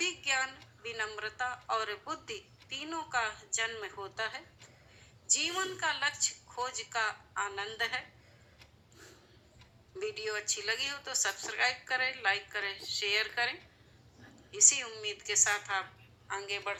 ज्ञान, विनम्रता और बुद्धि तीनों का जन्म होता है। जीवन का लक्ष्य खोज का आनंद है। वीडियो अच्छी लगी हो तो सब्सक्राइब करें, लाइक करें, शेयर करें। इसी उम्मीद के साथ आप आगे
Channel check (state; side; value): identical; both; correlation 1.00